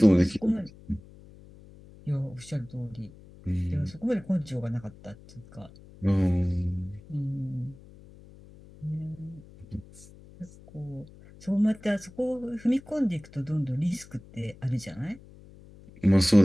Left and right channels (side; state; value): left; noise; hum, 21 dB below the sound